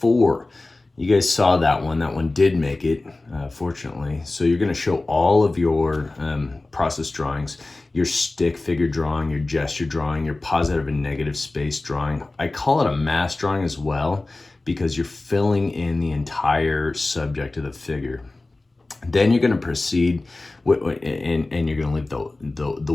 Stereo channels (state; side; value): quieter; right; 3.1 dB